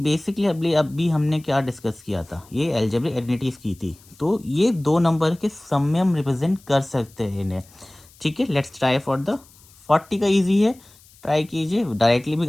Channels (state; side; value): noise; left; hiss, 26 dB below the sound